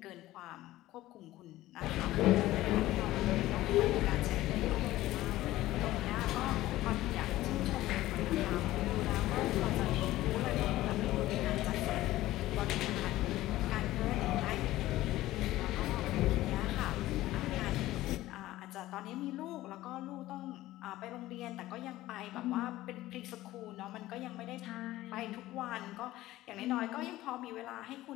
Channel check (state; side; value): quieter; right; 16.1 dB